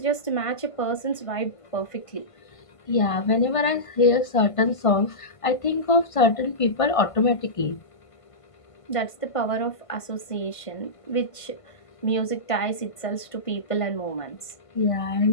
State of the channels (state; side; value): late; right; 1.5 ms